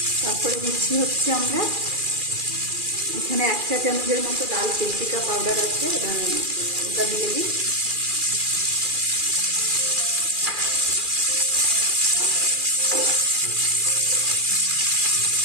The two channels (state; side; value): late; left; 2.4 ms